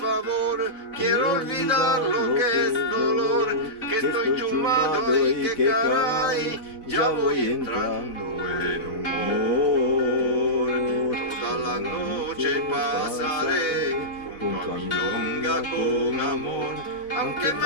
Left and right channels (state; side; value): late; right; 4.0 ms